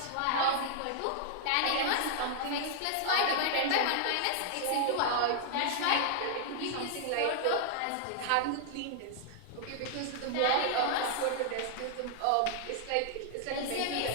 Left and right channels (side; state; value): both; different; correlation -0.01